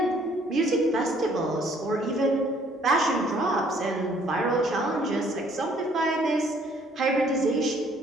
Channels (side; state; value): both; normal; correlation 0.61